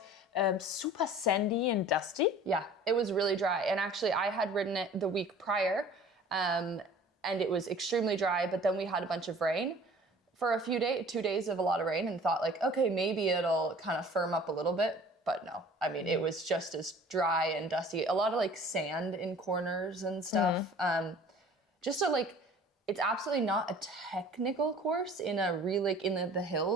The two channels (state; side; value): normal; both; correlation 0.48